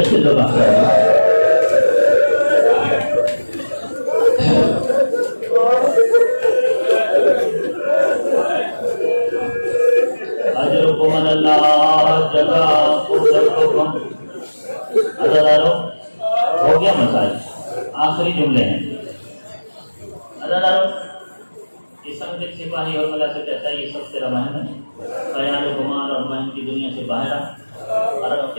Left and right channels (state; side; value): inverted; both; correlation -1.00